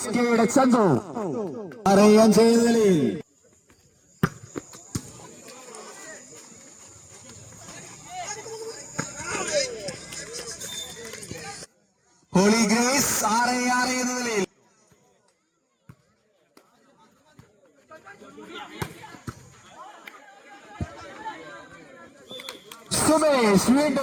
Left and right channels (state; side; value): identical; both; correlation 1.00